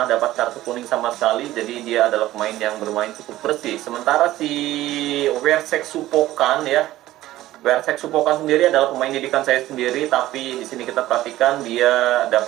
dapat kartu kuning sama sekali, jadi dia adalah pemain yang bermain cukup bersih. Sementara si Wersek Supokan sendiri adalah pemain didikan saya sendiri, tapi di sini kita perhatikan dia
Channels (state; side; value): quieter; left; 15.4 dB